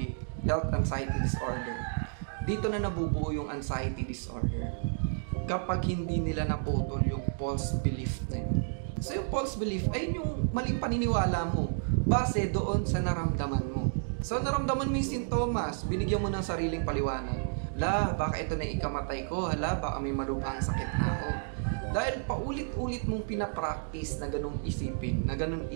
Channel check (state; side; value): silent; left; digital silence